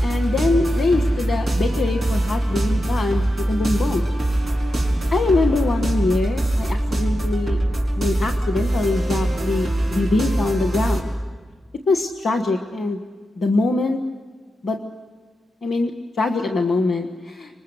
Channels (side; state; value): both; normal; correlation 0.89